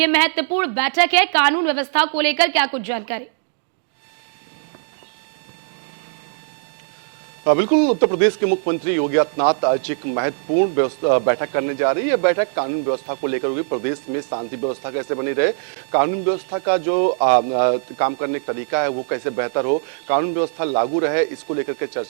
महत्वपूर्ण बैठक है, कानून व्यवस्था को लेकर क्या कुछ जानकारी? बिल्कुल, उत्तर प्रदेश के मुख्यमंत्री योगी आदित्यनाथ आज एक महत्वपूर्ण बैठक करने जा रही है। बैठक कानून व्यवस्था को लेकर होगी। प्रदेश में शांति व्यवस्था कैसे बनी रहे, कानून व्यवस्था का जो काम करने का तरीका है वो कैसे बेहतर हो, कानून व्यवस्था लागू रहे, इसको लेकर के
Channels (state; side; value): silent; left; digital silence